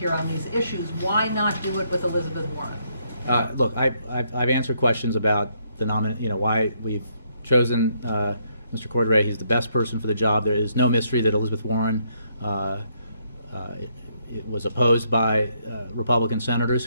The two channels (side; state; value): both; inverted; correlation -0.73